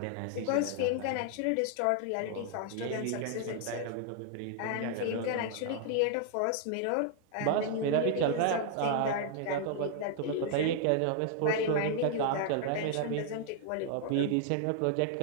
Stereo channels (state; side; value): different; both; correlation 0.00